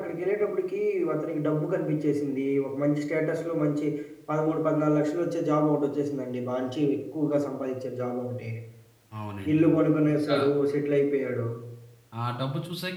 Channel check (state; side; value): identical; both; correlation 1.00